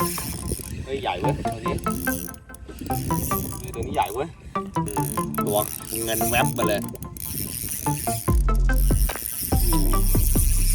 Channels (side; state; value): both; identical; correlation 1.00